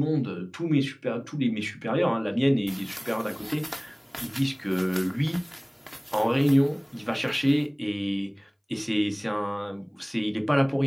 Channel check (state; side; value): identical; both; correlation 1.00